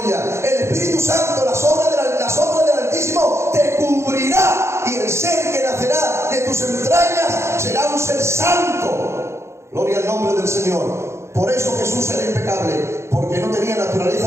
el Espíritu Santo, la sombra del Altísimo te cubrirá, y el ser que nacerá de tus entrañas será un ser santo. Gloria al nombre del Señor. Por eso Jesús era impecable, porque no tenía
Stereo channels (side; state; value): left; late; 0.13 ms